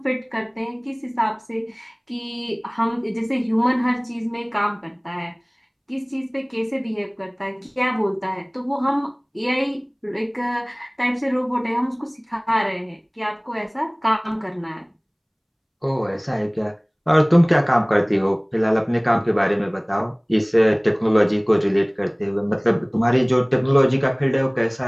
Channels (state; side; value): identical; both; correlation 1.00